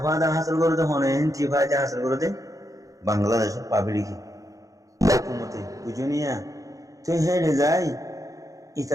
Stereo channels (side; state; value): left; late; 0.16 ms